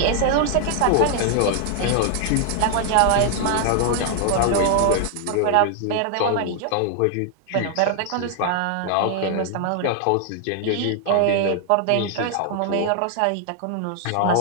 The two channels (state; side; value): different; both; correlation 0.00